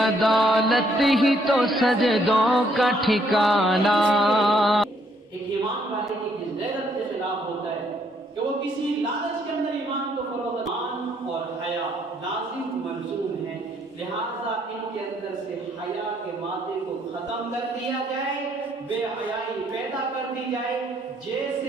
ہی تو سجدوں کا ٹھکانہ۔ ایک ایمان والے کی غیرت کے خلاف ہوتا ہے کہ وہ کسی لالچ کے اندر ایمان کو فروغ ایمان اور حیا لازم ملزوم ہے، لہذا ان کے اندر سے حیا کے مادے کو ختم کر دیا جائے، بے حیائی پیدا کر دی جائے۔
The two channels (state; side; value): normal; both; correlation 0.69